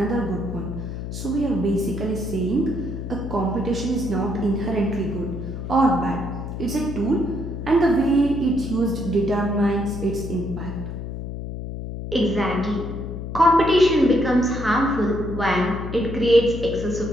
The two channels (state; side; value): noise; left; hum, 7 dB below the sound